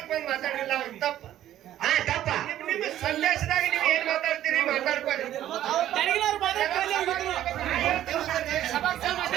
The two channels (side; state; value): left; quieter; 12.4 dB